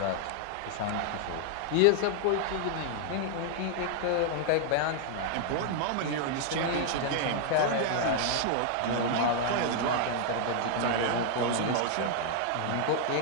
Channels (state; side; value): different; both; correlation 0.00